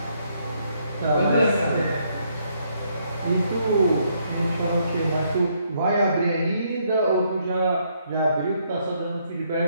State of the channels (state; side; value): inverted; both; correlation -0.72